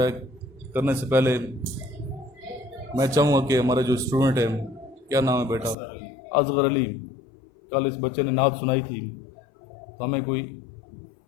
ہے کرنے سے پہلے میں چاہوں گا کہ ہمارا جو اسٹوڈنٹ ہے، کیا نام ہے بیٹا؟ اصغر علی، کل اس بچے نے نعت سنائی تھی، تو ہمیں کوئی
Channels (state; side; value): drops out; right; at 5.8 s